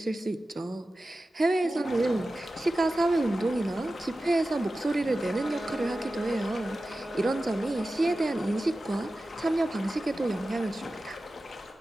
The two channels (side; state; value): both; normal; correlation 0.94